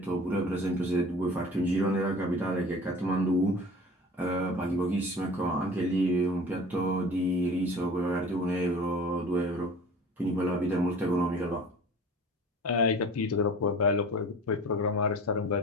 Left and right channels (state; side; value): normal; both; correlation 0.41